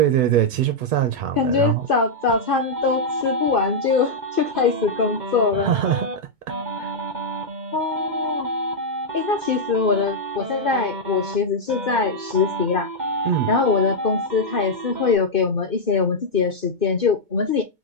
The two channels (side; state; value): left; late; 2.2 ms